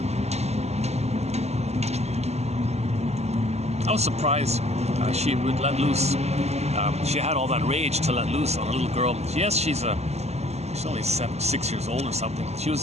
I was surprised she would let loose. She had all that rage to let loose on a little girl. Yes, she's only 6 years old or something. She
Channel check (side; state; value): left; late; 0.31 ms